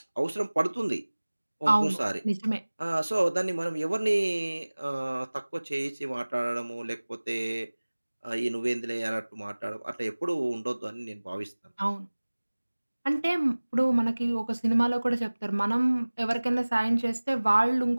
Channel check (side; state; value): both; inverted; correlation -1.00